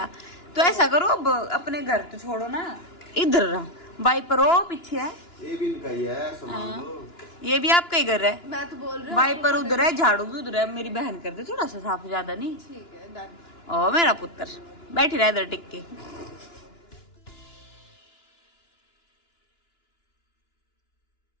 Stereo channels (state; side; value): late; right; 2.9 ms